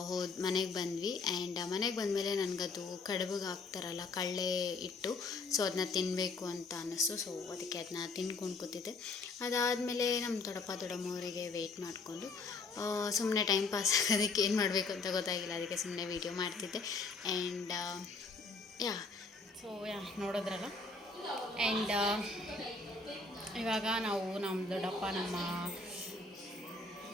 ಮನೆಗೆ ಬಂದ್ವಿ. ಆ್ಯಂಡ್ ಮನೆಗೆ ಬಂದಮೇಲೆ ನನಗದು ಕಡುಬಿಗೆ ಹಾಕ್ತಾರಲ್ಲ ಕಳ್ಳೆ ಇಟ್ಟು, ಸೊ ಅದನ್ನ ತಿನ್ನಬೇಕು ಅಂತ ಅನ್ನಿಸ್ತು. ಸೊ ಅದಕ್ಕೆ ಅದನ್ನ ತಿನ್ಕೊಂಡು ಕೂತಿದ್ದೆ. ಅದಾದಮೇಲೆ ನಮ್ಮ ದೊಡ್ಡಮ್ಮವರಿಗೆ ವೆಯ್ಟ್ ಮಾಡಿಕೊಂಡು ಸುಮ್ಮನೆ ಟೈಮ್ ಪಾಸ್ ಆಗೋದಕ್ಕೆ ಏನು ಮಾಡಬೇಕು ಅಂತ ಗೊತ್ತಾಗಿಲ್ಲ, ಅದಕ್ಕೆ ಸುಮ್ಮನೆ ವೀಡಿಯೋ ಮಾಡ್ತಿದ್ದೆ. ಆ್ಯಂಡ್ ನೋಡಿದ್ರಲ್ಲ. ಆ್ಯಂಡ್ ಇವಾಗ ನಾವು ನಮ್ಮ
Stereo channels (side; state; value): right; quieter; 3.8 dB